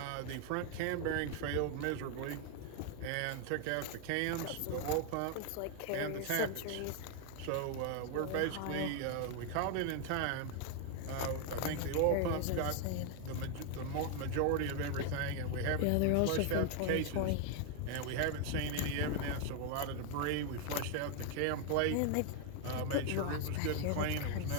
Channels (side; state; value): both; different; correlation 0.01